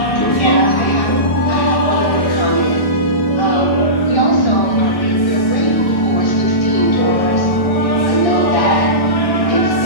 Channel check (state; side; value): late; right; 1.1 ms